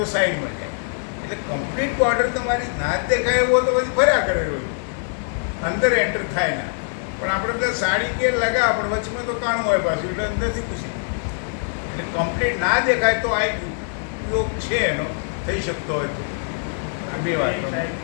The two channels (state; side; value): silent; right; digital silence